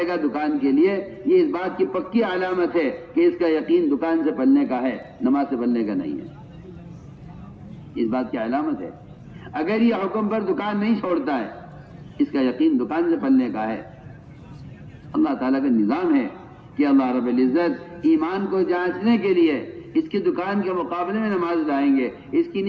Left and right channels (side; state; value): both; identical; correlation 1.00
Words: گا دکان کے لیے، یہ اس بات کی پکی علامت ہے کہ اس کا یقین دکان سے پلنے کا ہے، نماز سے پلنے کا نہیں ہے. اس بات کی علامت ہے. اگر یہ حکم پر دکان نہیں چھوڑتا ہے اس کا یقین دکان سے پلنے کا ہے. اللہ تعالیٰ کا نظام ہے کہ اللہ رب العزت ایمان کو جانچنے کے لیے اس کی دکان کے مقابلے میں نماز لائیں گے، اس کی